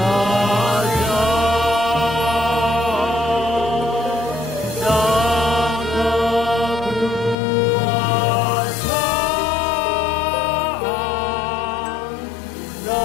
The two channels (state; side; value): drops out; right; at 7.4 s